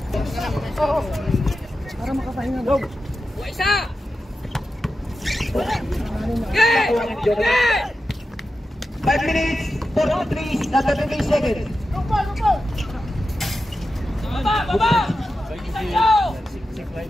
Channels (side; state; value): both; normal; correlation 0.91